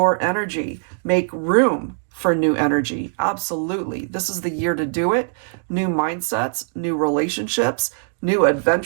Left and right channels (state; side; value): silent; left; digital silence